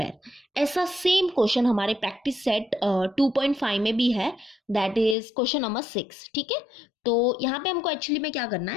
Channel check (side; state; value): right; drops out; at 5.2 s